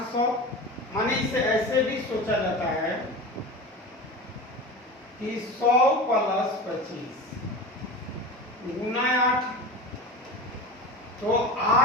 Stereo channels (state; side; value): normal; both; correlation 0.30